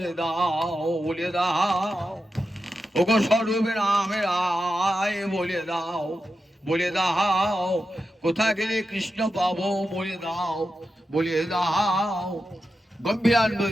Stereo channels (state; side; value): normal; both; correlation 0.89